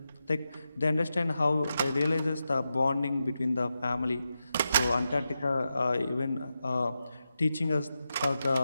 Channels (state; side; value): inverted; both; correlation -0.89